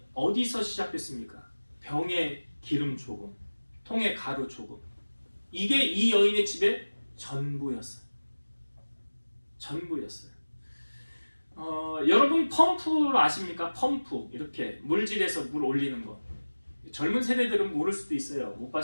어디서 시작됐습니까? 병에 기름 조금, 통에 가루 조금. 이게 이 여인의 집의 전부였어요. 전부였어요. 여러분 펌프 아십니까? 펌프 이렇게 물질에서 물 올리는 거. 젊은 세대들은 모를 수도 있어요. 못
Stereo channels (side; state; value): both; inverted; correlation -1.00